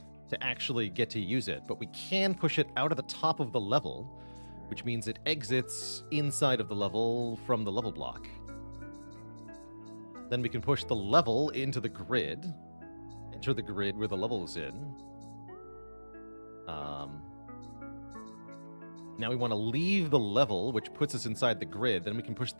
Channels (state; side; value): inverted; both; correlation -1.00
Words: to actually get to use it, but we can push it out of the top of the level, which means it exits inside of the level from the level block. Then we can push the level into the grid, enter the grid where the level is in. Now we want to leave the level, which puts us inside the grid. Then we can push